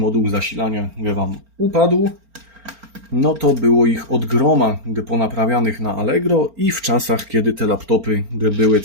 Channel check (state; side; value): late; left; 4.4 ms